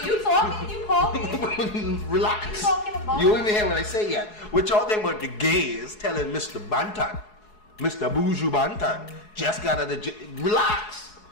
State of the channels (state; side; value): late; right; 4.7 ms